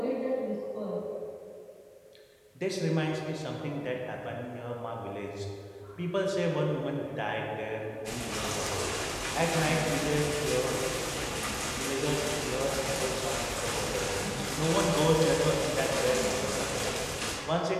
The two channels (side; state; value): both; identical; correlation 1.00